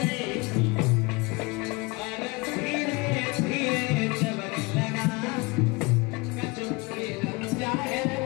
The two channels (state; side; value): quieter; right; 25.8 dB